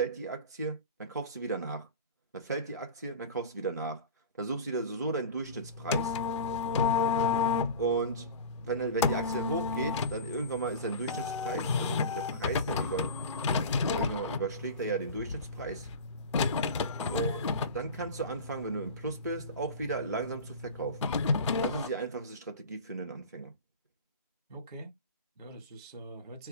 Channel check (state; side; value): inverted; both; correlation -0.32